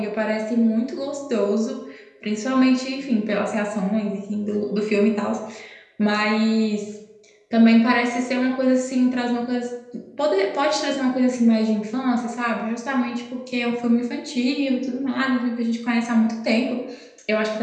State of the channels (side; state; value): both; identical; correlation 1.00